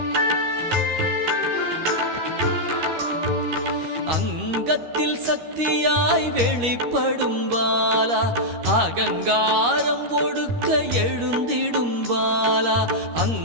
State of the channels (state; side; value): late; left; 13 ms